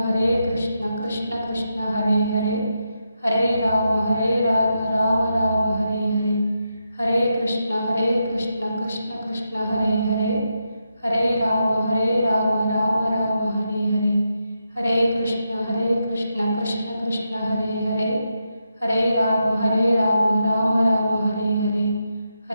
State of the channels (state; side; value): inverted; both; correlation -0.85